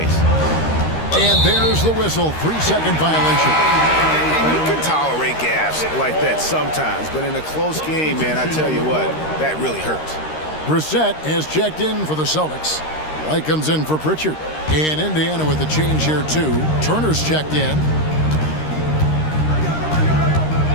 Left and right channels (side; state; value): right; late; 13 ms